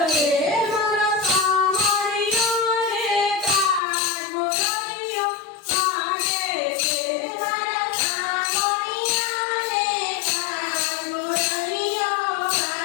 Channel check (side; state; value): right; drops out; at 3.8 s